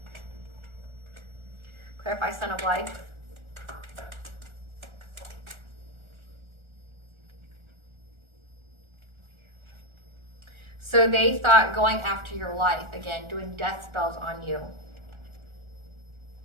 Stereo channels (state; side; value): late; left; 1.4 ms